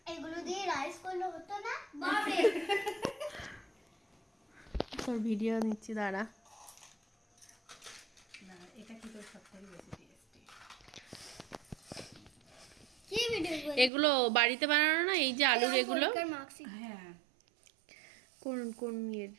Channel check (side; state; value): left; drops out; at 13.9 s